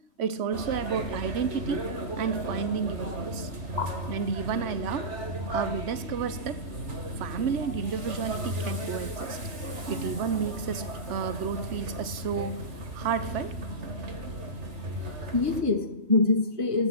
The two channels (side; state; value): left; late; 3.1 ms